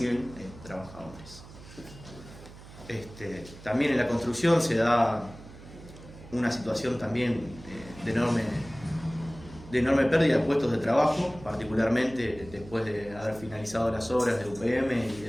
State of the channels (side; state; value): right; noise; hum, 17 dB below the sound